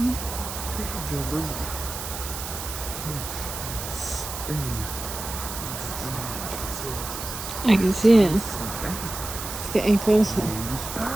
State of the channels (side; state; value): right; noise; hiss, 7 dB below the sound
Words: bedroom. I can see it. It's getting closer.